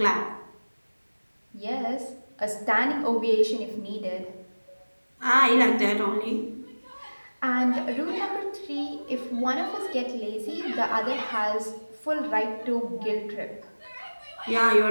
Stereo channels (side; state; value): both; inverted; correlation -1.00